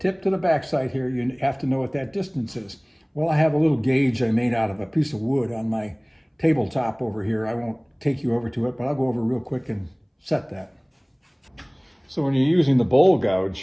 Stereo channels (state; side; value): identical; both; correlation 1.00